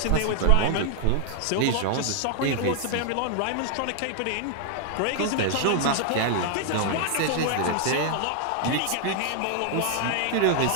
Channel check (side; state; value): both; different; correlation 0.00